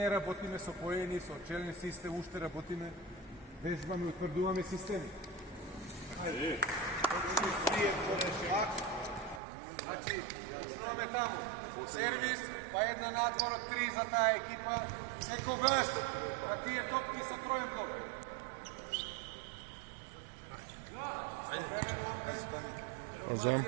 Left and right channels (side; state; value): left; drops out; at 9.4 s